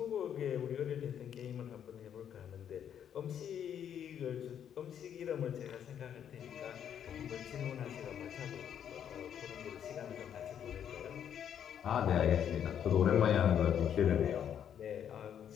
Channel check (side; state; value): right; quieter; 9.1 dB